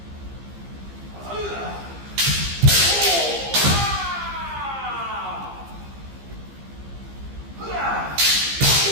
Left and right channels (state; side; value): late; left; 15 ms